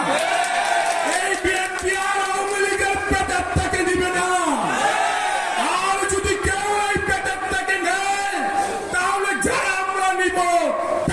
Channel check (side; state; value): both; identical; correlation 1.00